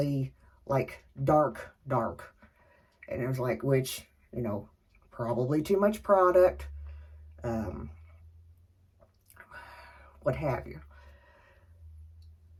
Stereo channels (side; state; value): both; identical; correlation 1.00